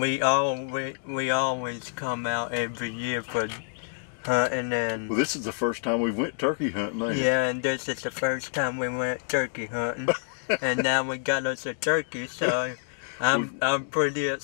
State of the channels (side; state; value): right; silent; digital silence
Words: always come out every year for hunting. And Well, this is the first time we went turkey hunting, ain't it? yeah, and this is the first time we went turkey hunting, and now we got us a turkey, so I'm pretty